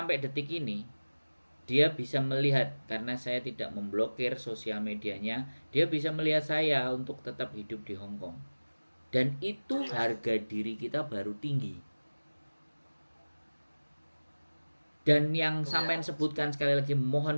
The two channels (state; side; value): inverted; both; correlation -1.00